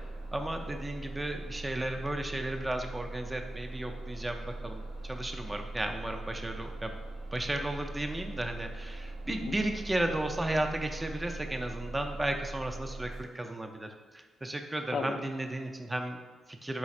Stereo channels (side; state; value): both; normal; correlation 0.93